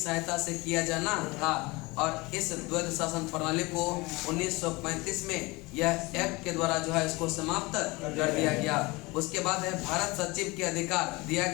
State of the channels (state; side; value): quieter; right; 23.6 dB